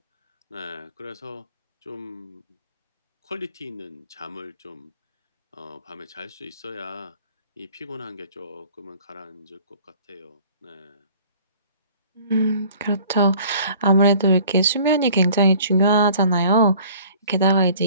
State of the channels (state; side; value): inverted; both; correlation -0.51